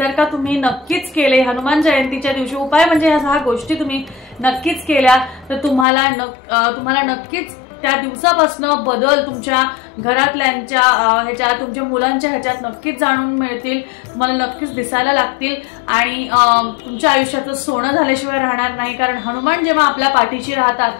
का तुम्ही नक्कीच केले हनुमान जयंतीच्या दिवशी, उपाय म्हणजे ह्या 6 गोष्टी तुम्ही नक्कीच केल्या तर तुम्हाला नक्कीच त्या दिवसापासून बदल तुमच्या घरातल्यांच्या ह्याच्यात, तुमच्या मुलांच्या ह्याच्यात नक्कीच जाणून मिळतील, तुम्हाला नक्कीच दिसायला लागतील आणि तुमच्या आयुष्याचं सोनं झाल्याशिवाय राहणार नाही. कारण हनुमान जेव्हा आपल्या पाठीशी राहतात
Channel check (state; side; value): drops out; right; at 5.9 s